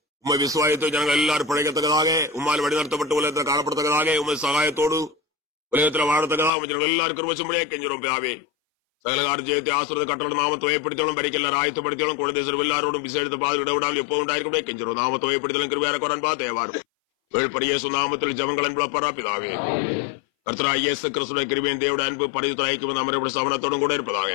உண்மை விசுவாயத்தை ஜனங்கள் எல்லாரும் பிழைக்கத்தக்கதாக உம்மால் வழிநடத்தப்பட்டு உலகத்தில் காணப்படத்தக்கதாக உண்மை சகாயத்தோடு உலகத்தில் வாழத்தக்கதாக ஜனங்கள் எல்லாரும் கிருபையும்படியாக கெஞ்சுறோம் பிதாவே. சகல கால ஜெயத்தை ஆசிரியத்தை கட்டளட்டும் நாமத்தை ஏற்படுத்தலும் பறிக்க எல்லாரும் ஆயத்தப்படுத்தலும் குழந்தை எல்லாரோடும் விசேஷத்தை பாது விடவிடாமல் எப்போது உண்டாயிருக்கும் கெஞ்சுறோம். நாமத்தை ஏற்படுத்தலும் கிருபையாக குரான் பார்த்து ஏவாரும் வேழ்பரிய நாமத்தில் ஜபங்கள் என்பளப்பரா பிதாவே. கர்த்தராகிய இயேசு கிறிஸ்துவின் கிருபையின் தேவனுடைய அன்பு பரிசுத்த ஐக்கியம் நம்முடைய சமணத்தோடும் கூட இருப்பதாக.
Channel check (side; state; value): right; drops out; at 6.5 s